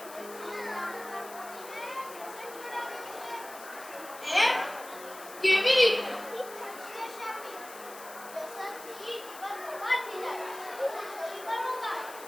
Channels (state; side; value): noise; left; hiss, 15 dB below the sound